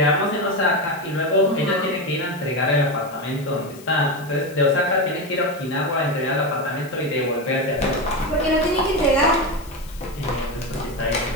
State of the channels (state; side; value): noise; left; hiss, 21 dB below the sound